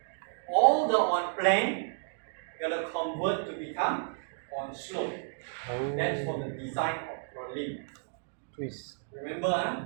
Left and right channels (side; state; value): left; silent; digital silence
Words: all the on plane, you're going to convert to become on slope. oh. That's for the design of purlin. Twist. Remember, huh?